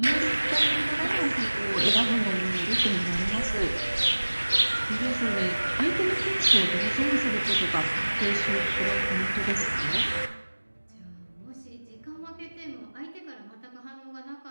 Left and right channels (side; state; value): both; inverted; correlation -1.00